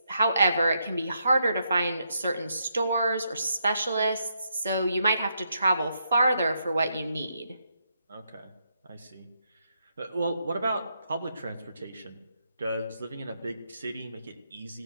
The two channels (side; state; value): both; inverted; correlation -0.79